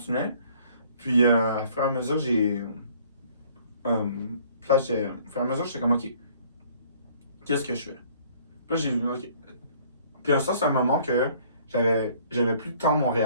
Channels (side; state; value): both; inverted; correlation -0.57